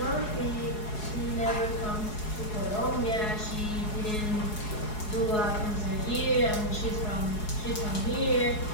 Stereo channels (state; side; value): late; right; 4.7 ms